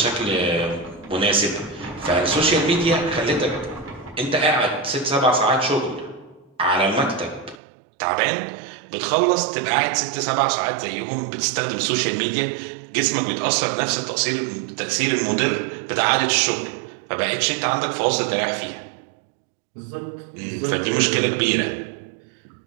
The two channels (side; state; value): left; drops out; at 7.6 s